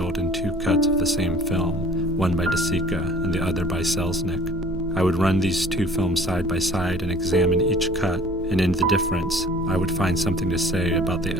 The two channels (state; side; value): noise; right; rumble, 16 dB below the sound